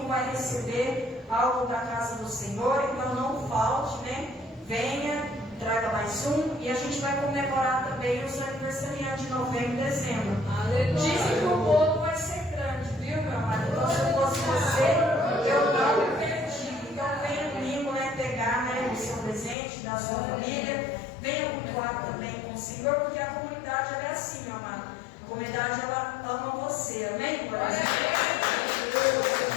vai receber algo da casa do Senhor. Então não falte, né? Venha, traga mais um. E a gente vai comemorar também os aniversariantes de novembro e dezembro. Dizem que o bolo vai ser grande, viu, meu amado? Então se eu fosse você, eu não perdi. Então venha domingo, né, pegar, né, o seu presente da sua família. Venha cultuar também com o Senhor, porque a comunidade ela é assim, meu amado. A comunidade ela ama você. Amém? Glória a Deus.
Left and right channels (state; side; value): drops out; right; at 19.6 s